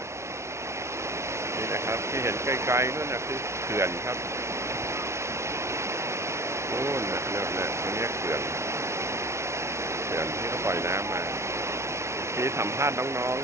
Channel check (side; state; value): left; late; 0.13 ms